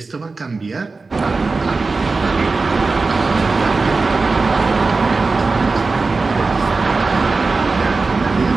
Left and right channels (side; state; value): left; quieter; 3.9 dB